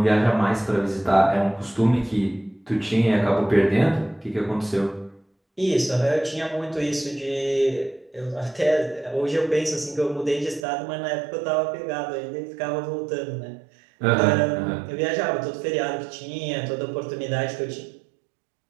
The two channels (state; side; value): drops out; left; at 10.7 s